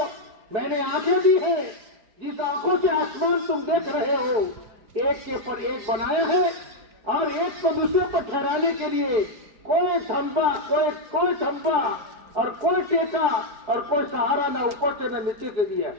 میں نے آنکھیں دی ہیں، جس آنکھوں سے آسمان تم دیکھ رہے ہو ایک کے پر ایک بنایا ہے، اور ایک کو دوسرے پر ٹھہرانے کے لیے کوئی تھمبا، کوئی تھمبا اور کوئی ٹیکا اور کوئی سہارا نہ اوپر سے نہ نیچے سے دیا.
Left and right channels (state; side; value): late; left; 4.7 ms